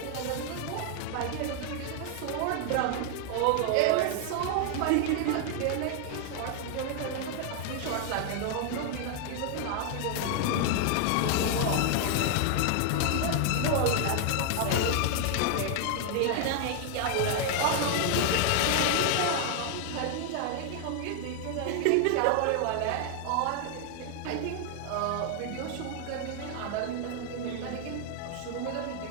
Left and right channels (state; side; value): different; both; correlation 0.00